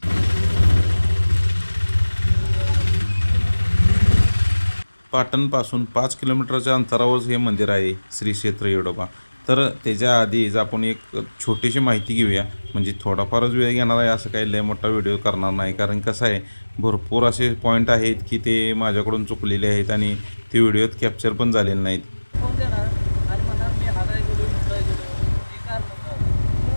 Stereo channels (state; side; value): inverted; both; correlation -1.00